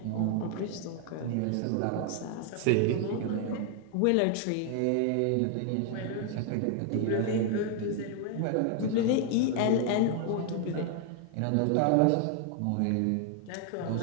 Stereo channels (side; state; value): both; different; correlation 0.00